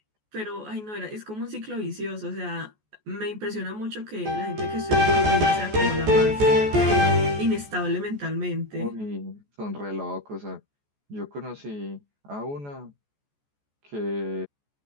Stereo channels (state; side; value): late; left; 14 ms